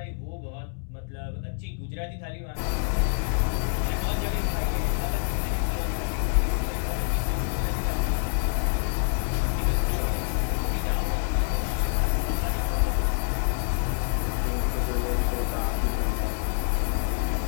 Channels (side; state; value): right; silent; digital silence